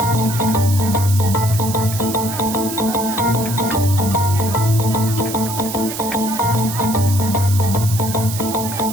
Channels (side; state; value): right; noise; hiss, 8 dB below the sound